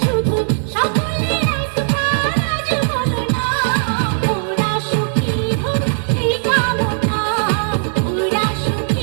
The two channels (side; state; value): left; silent; digital silence